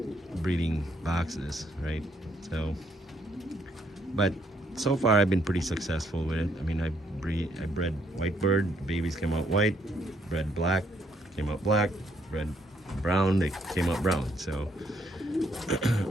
breeding boxes, right? So, but so far I've been pretty successful with it. I mean, I bred white bird, babies came out white, bred black, came out black, bred brown, they came out brown. So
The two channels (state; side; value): normal; both; correlation 0.71